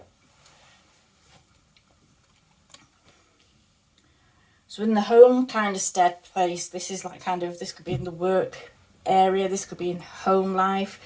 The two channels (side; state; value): both; identical; correlation 1.00